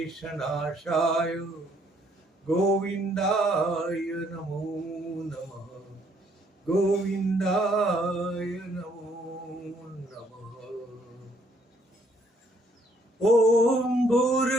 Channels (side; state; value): both; normal; correlation 0.67